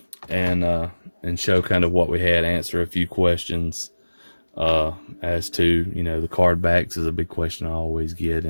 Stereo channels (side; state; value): both; inverted; correlation -1.00